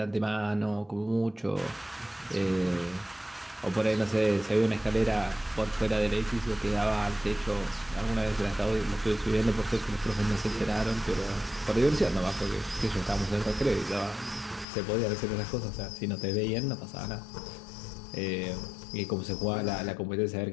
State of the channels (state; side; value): drops out; right; at 14.7 s